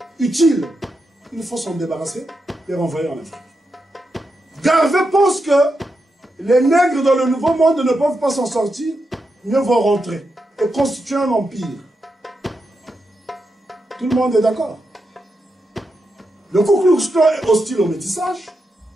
utiles, il faut s'en débarrasser et renvoyer en Afrique. Garvey pense que les nègres dans le Nouveau Monde ne peuvent pas s'en sortir, mieux vaut rentrer et constituer un empire. Tout le monde est d'accord. Le Ku Klux Klan est hostile au métissage,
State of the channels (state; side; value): normal; both; correlation 0.86